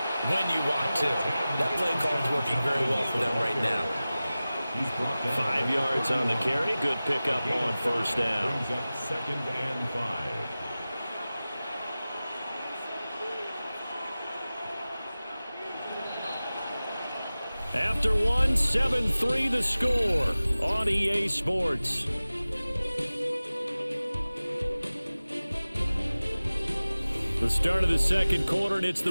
when you want to. That play call is working very well for them right now. 5 yards on the carry, good pickup on first down. Brings up 2nd and 5. After one, 7-3 the score on EA Sports. The start of the second quarter, and it's the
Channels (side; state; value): both; inverted; correlation -0.97